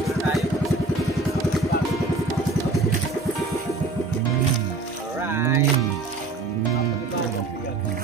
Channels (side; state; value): left; quieter; 3.4 dB